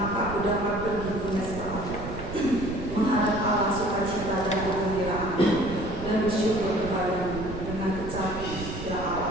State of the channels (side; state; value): right; noise; rumble, 9 dB below the sound